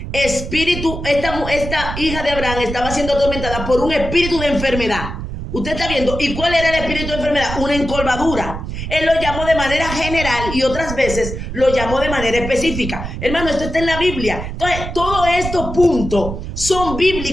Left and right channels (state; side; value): noise; right; rumble, 7 dB below the sound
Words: espíritu, esta hija de Abraham estaba siendo atormentada por un espíritu de enfermedad. Usted está viendo. ¿Y cuál era el espíritu de enfermedad? Una encorvadura. Él lo llamó de manera general y otras veces lo llamó de manera específica. Hermano, esto está en la Biblia. Entonces, todos estos puntos son